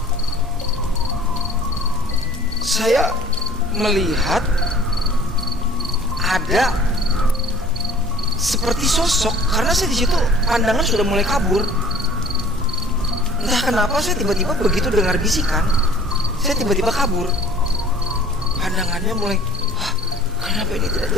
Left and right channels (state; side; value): normal; both; correlation 0.50